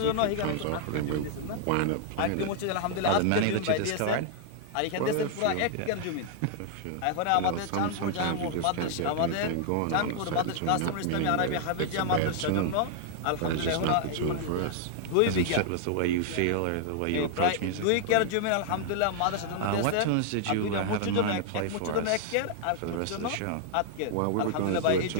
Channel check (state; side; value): different; both; correlation -0.01